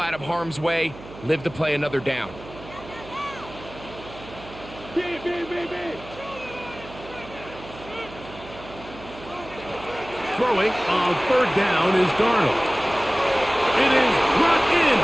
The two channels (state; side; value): noise; right; hum, 16 dB below the sound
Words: of harm's way, live to play another down. Throwing on 3rd down is Darnold. It is brought in